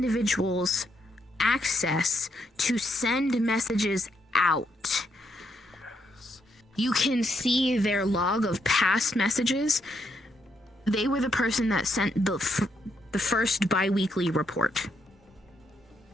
access to send messages out. You can see their log of past messages. They were the person that sent the first bi-weekly report.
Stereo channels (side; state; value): both; normal; correlation 0.77